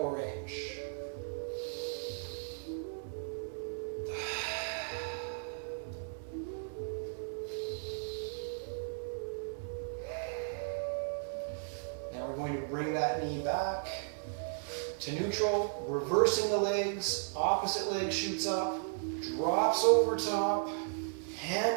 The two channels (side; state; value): left; silent; 54 dB below the other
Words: range. Now we're going to bring that knee back to neutral, reversing the legs. Opposite leg shoots up, drops over top,